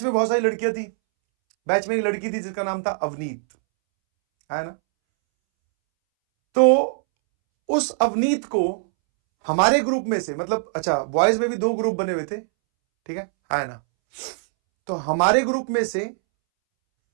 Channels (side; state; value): left; silent; 64 dB below the other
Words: में बहुत सारी लड़कियां थी, बैच में एक लड़की थी जिसका नाम था अवनीत, है ना। तो उस अवनीत को हमारे ग्रुप में से, मतलब अच्छा बॉयज में भी 2 ग्रुप बने हुए थे, ठीक है ना। तो हमारे ग्रुप में से